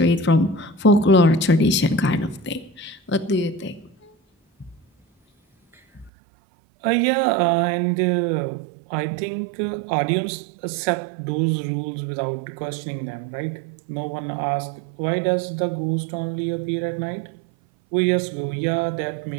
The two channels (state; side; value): drops out; left; at 6.1 s